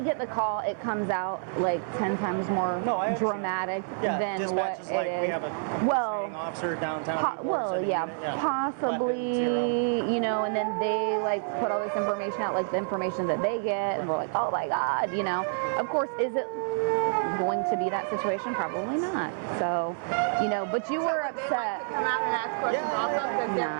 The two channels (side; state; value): left; silent; 59 dB below the other